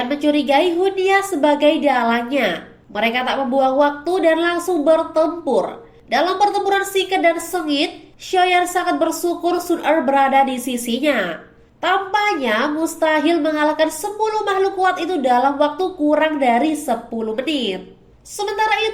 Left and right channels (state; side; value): identical; both; correlation 1.00